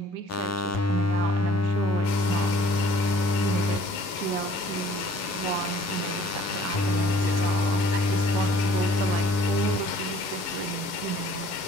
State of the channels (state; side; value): late; right; 11 ms